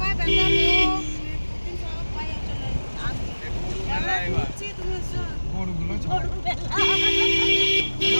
বেটা লোক তুমি সব পাইয়া চলে আসছি, তুমি এসো। গরুগুলো ছাড়।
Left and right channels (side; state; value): both; inverted; correlation -1.00